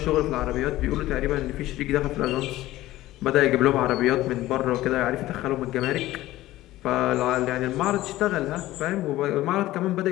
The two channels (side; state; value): right; quieter; 16.1 dB